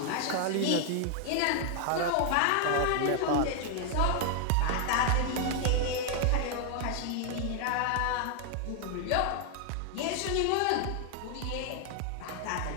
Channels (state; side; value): different; both; correlation 0.00